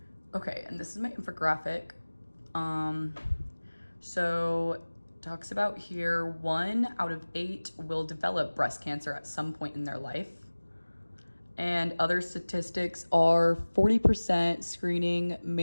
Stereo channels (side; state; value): both; inverted; correlation -1.00